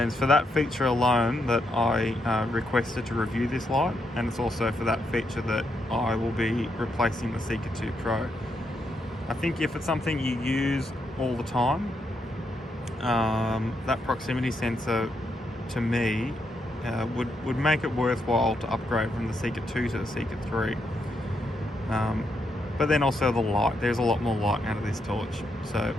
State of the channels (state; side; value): normal; both; correlation 0.80